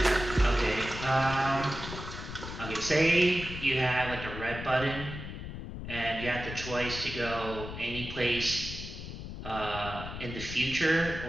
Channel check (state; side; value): noise; left; rumble, 9 dB below the sound